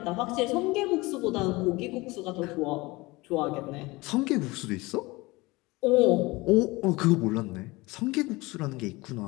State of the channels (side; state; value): right; quieter; 22.5 dB